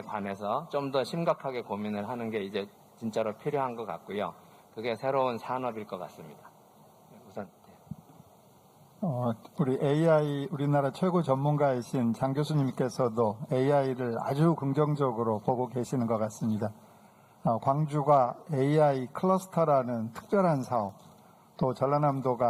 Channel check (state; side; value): identical; both; correlation 1.00